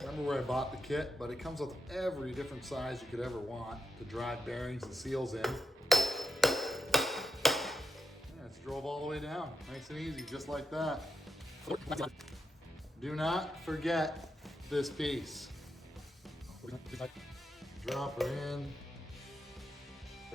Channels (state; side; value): normal; both; correlation 0.85